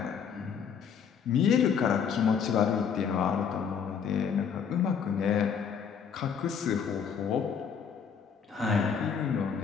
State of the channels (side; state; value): right; quieter; 7.0 dB